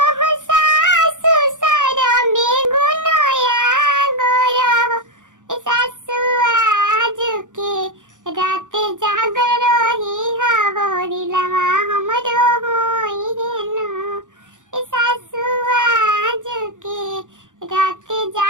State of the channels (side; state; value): left; late; 0.87 ms